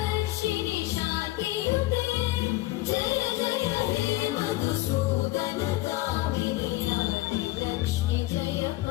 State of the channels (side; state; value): right; quieter; 17.7 dB